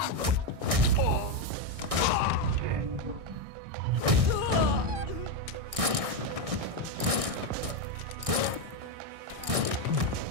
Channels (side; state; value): left; late; 1.6 ms